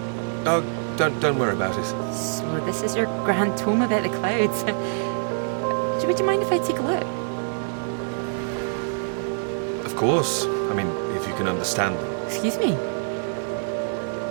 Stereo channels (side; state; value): left; silent; 58 dB below the other